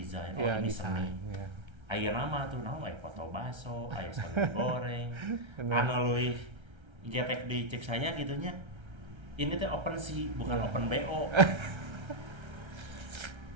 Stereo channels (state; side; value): late; left; 1.3 ms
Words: ini seni. Ayeuna mah tuh naon foto baso, aya sambal goreng. Anu leuwih getek dicek saya gitunya. Ini teh OpenSea bukan OpenBO.